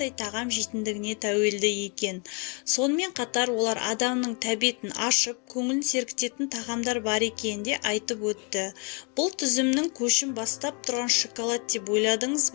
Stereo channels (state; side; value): quieter; right; 35.4 dB